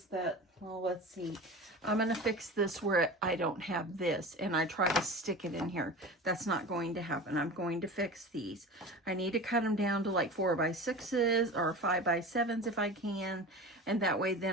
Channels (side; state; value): both; normal; correlation 0.33